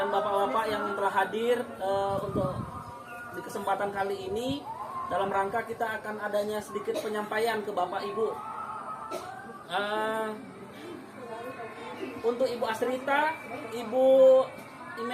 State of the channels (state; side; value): identical; both; correlation 1.00